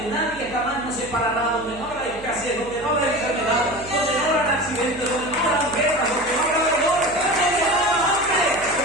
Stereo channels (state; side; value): noise; left; hum, 18 dB below the sound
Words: nadie jamás nos separará, donde no habrá escasez, donde no habrá enfermedad, donde no habrá accidentes, donde no habrá guerras, donde no habrá dolor, donde no habrá hambre,